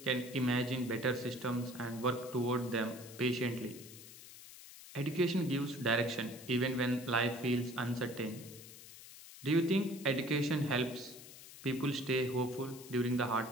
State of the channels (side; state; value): left; noise; hiss, 16 dB below the sound